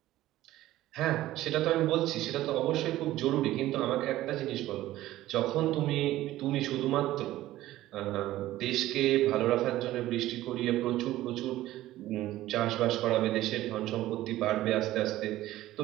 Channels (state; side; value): quieter; left; 15.2 dB